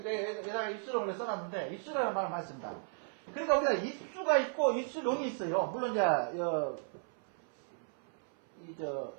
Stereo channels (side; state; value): left; silent; 54 dB below the other